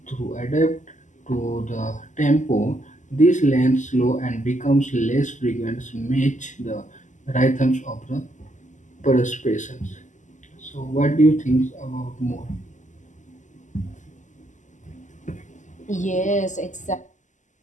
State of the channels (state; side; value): late; right; 0.36 ms